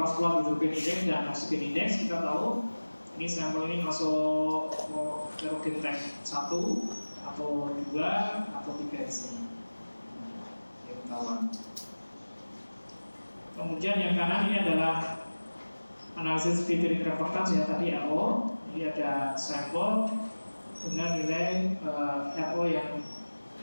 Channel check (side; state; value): both; inverted; correlation -1.00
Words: plot hydrogen index dan oxygen index kita tahu ini sampel ini masuk kerogenite 1 atau 2 atau 3 di sini. Yang ketahuan. Kemudian yang kanan ini adalah analisis filtering reference ya tadi RO. Ini ada sampel dengan nilai RO yang